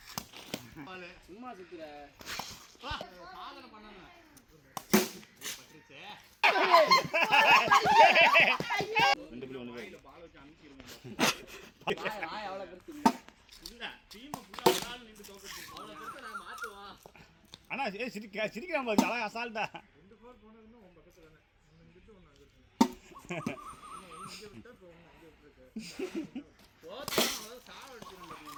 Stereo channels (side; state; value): both; identical; correlation 1.00